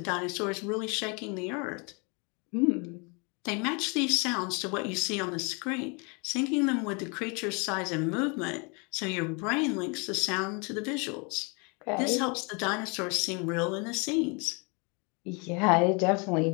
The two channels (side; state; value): right; quieter; 32.5 dB